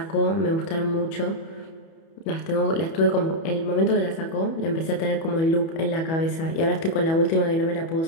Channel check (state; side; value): late; right; 31 ms